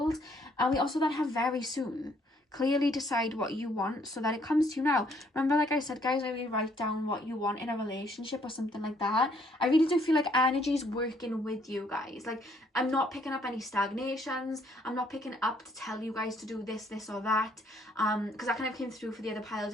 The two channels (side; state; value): both; normal; correlation 0.66